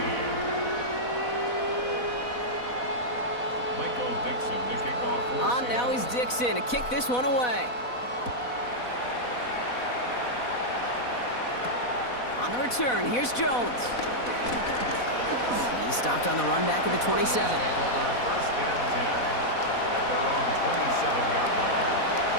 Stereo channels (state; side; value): late; right; 4.1 ms